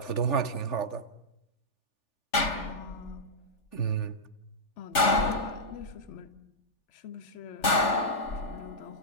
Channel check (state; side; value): late; right; 3.4 ms